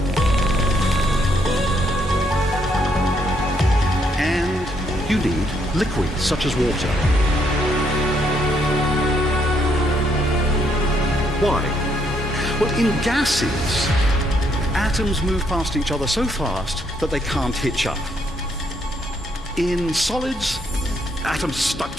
And you need liquids, such as water. Why? Well, in gases, atoms move past each other so fast that they can't hitch up. In solids, atoms stuck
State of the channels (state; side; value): normal; both; correlation 0.73